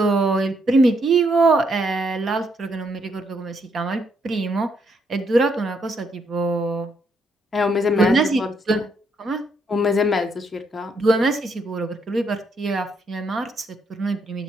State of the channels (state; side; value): normal; both; correlation 0.74